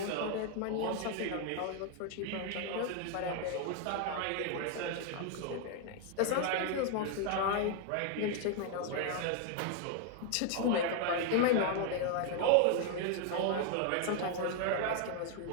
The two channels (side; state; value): both; different; correlation 0.00